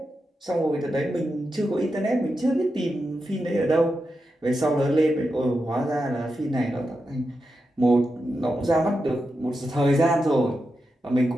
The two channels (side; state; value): both; normal; correlation 0.88